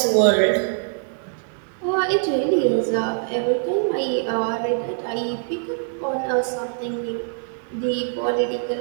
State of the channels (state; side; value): silent; left; digital silence